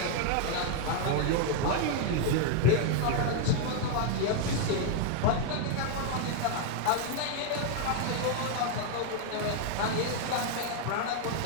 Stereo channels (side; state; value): both; different; correlation 0.00